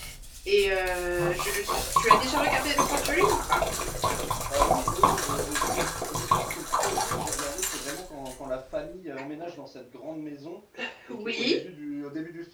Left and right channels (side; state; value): both; identical; correlation 1.00